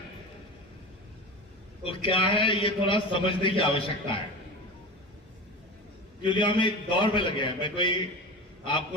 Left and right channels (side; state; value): both; normal; correlation 0.29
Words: तो क्या है ये थोड़ा समझने की आवश्यकता है, क्योंकि हम एक दौर में लगे हैं। मैं कोई